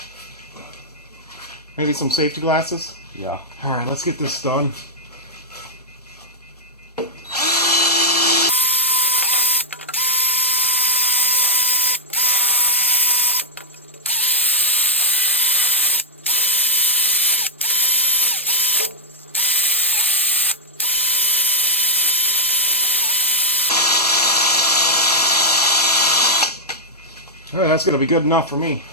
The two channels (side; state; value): both; normal; correlation -0.08